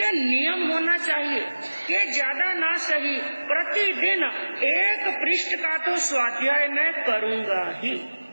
नियम होना चाहिए कि ज्यादा ना सही प्रतिदिन 1 पृष्ठ का तो स्वाध्याय मैं करूंगा ही।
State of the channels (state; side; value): inverted; both; correlation -1.00